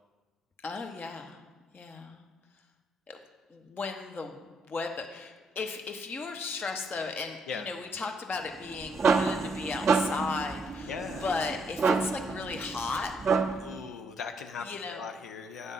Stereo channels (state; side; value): normal; both; correlation 0.73